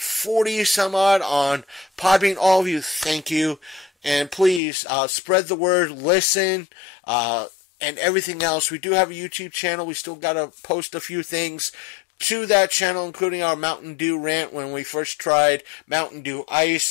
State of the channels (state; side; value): drops out; right; at 4.6 s